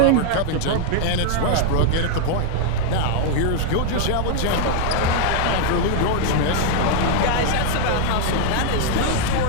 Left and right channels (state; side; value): different; both; correlation 0.00